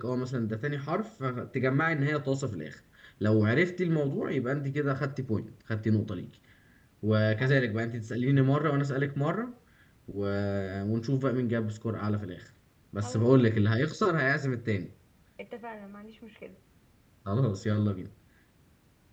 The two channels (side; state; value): both; identical; correlation 1.00